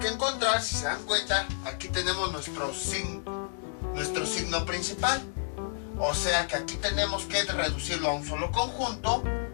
encontrar, si se dan cuenta, aquí tenemos nuestro signo principal. O sea que aquí tenemos que reducirlo a un solo conjunto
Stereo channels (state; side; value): silent; right; digital silence